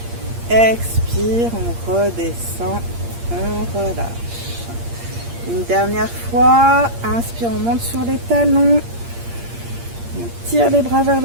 Expire, on redescend, on relâche. Une dernière fois, inspire, on monte sur les talons. On tire les bras vers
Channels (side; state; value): left; late; 8.6 ms